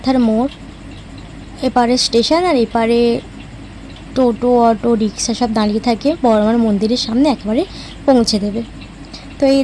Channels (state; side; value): identical; both; correlation 1.00